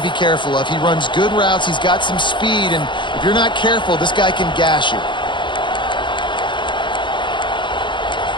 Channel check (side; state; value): right; late; 0.23 ms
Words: be careful of. He runs good routes. He's got some speed, and if you're not careful, this guy can gash you.